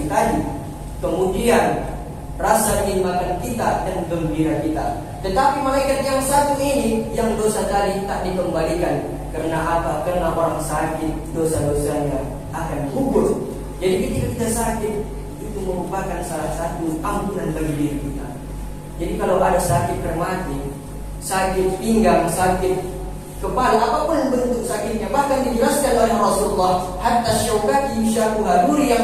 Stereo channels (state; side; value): identical; both; correlation 1.00